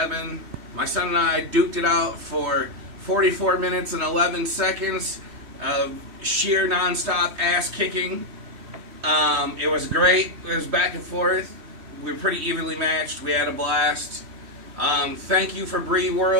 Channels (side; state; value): left; late; 3.1 ms